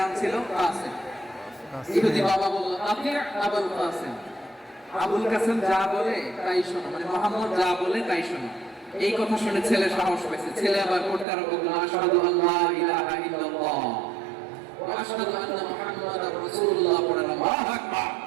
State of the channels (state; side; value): drops out; left; at 11.2 s